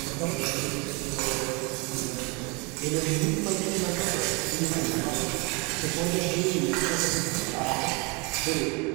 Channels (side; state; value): left; quieter; 29.9 dB